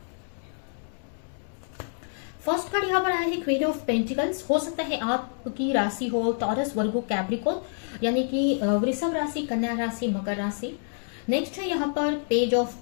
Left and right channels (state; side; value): silent; right; 60 dB below the other